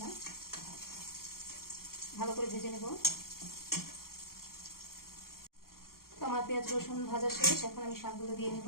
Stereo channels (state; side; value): late; right; 0.92 ms